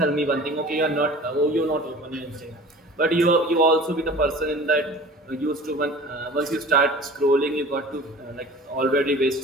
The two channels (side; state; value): both; normal; correlation 0.42